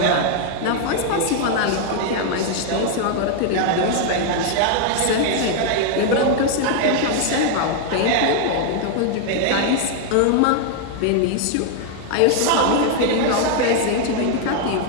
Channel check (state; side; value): different; both; correlation 0.00